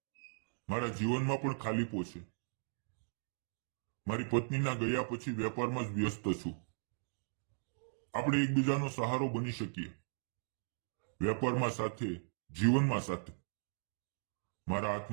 મારા જીવનમાં પણ ખાલીપો છે. મારી પત્નીના ગયા પછી વેપારમાં જ વ્યસ્ત છું. આપણે એકબીજાનો સહારો બની શકીએ, વેપારમાં સાથે, જીવનમાં સાથે. મારા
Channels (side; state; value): left; silent; digital silence